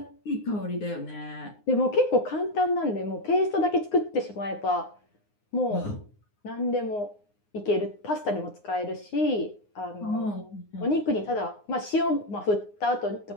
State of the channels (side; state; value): right; late; 9.7 ms